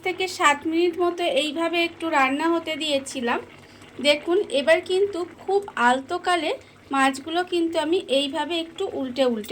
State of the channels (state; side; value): identical; both; correlation 1.00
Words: থেকে 7 মিনিট মতো এইভাবে একটু রান্না হতে দিয়েছিলাম। দেখুন এবার কিন্তু খুব আলতোকালে মাছগুলো কিন্তু আমি এইভাবে একটু উল্টে